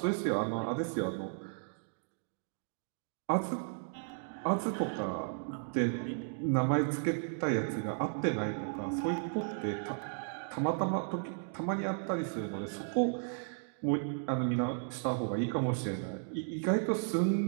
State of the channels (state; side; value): silent; left; digital silence